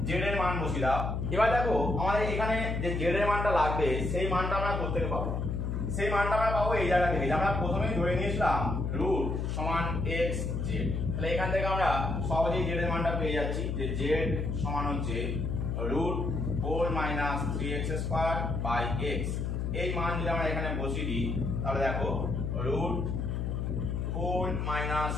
জেড এর মান বসিয়ে দাও। এবার দেখো আমাদের এখানে যে জেড এর মানটা লাগবে সেই মানটা আমরা কোথা থেকে পাবো? সেই মানটা আমরা পাবো এই জায়গা থেকে, আমরা প্রথমেই ধরে নিয়েছিলাম রুট সমান x জেড। তাহলে এখান থেকে আমরা সহজেই জেড এর মানটা পেয়ে যাচ্ছি যে জেড সমান হচ্ছে √4-3x²/x। এই মান যদি আমরা এখানে বসিয়ে দিই তাহলে দেখো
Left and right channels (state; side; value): noise; left; hum, 1 dB below the sound